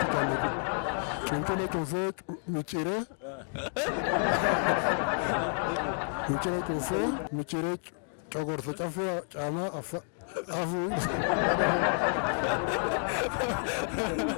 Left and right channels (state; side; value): silent; right; 58 dB below the other